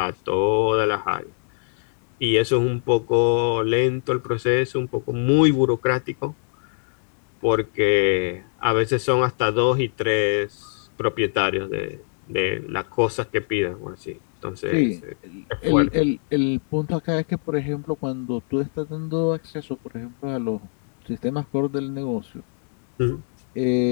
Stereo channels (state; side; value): silent; right; 63 dB below the other